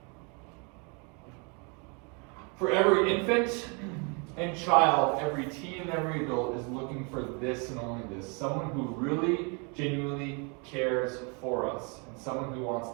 For every infant and child, every teen and every adult is looking for this and only this. Someone who really, genuinely cares for us. And someone who wants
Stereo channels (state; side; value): quieter; left; 34.2 dB